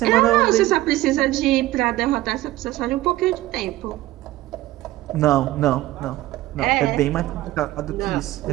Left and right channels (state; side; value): quieter; left; 16.5 dB